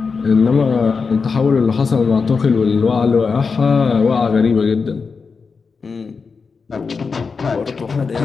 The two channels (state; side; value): quieter; right; 5.0 dB